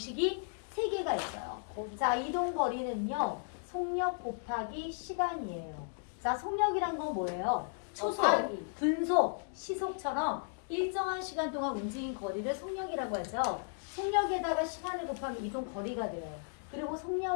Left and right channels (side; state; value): right; silent; digital silence